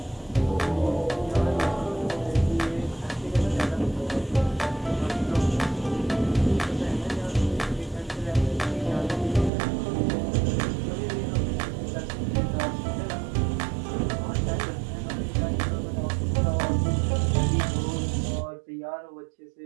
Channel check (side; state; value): left; drops out; at 9.5 s